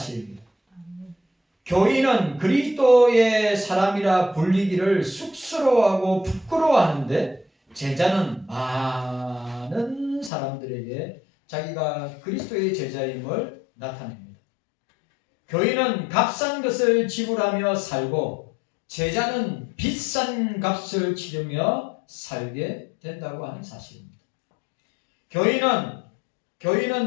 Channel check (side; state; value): right; drops out; at 10.3 s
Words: 교인은 그리스도의 사람이라 불리기를 쑥스러워하고 부끄러워하는데 제자는 많은 사람들에게 자기가 그리스도의 제자임을 나타냅니다. 교인은 값싼 것을 지불하며 살고 제자는 비싼 값을 치르며 살게 된다고 하는 사실입니다.